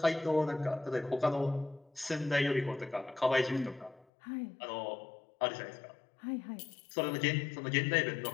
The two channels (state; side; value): drops out; right; at 4.0 s